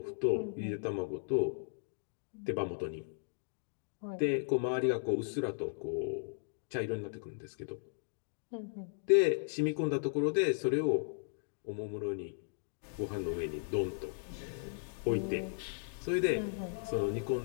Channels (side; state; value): right; silent; digital silence